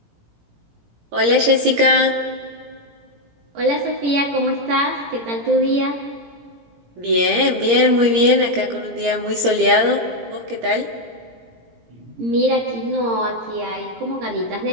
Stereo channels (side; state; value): left; late; 17 ms